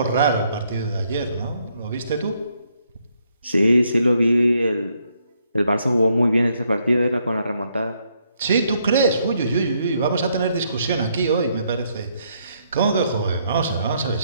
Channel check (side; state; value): both; inverted; correlation -0.73